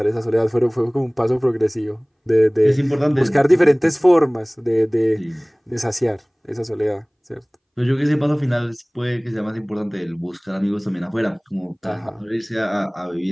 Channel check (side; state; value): both; identical; correlation 1.00